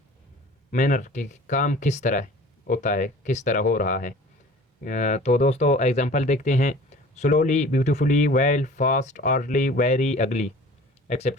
मैनर के काम किस तरह होता है, किस तरह हो रहा है। तो दोस्तों एग्जांपल देखते हैं। Slowly, beautifully, well, fast, orderly, very, अगली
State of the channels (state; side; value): normal; both; correlation 0.45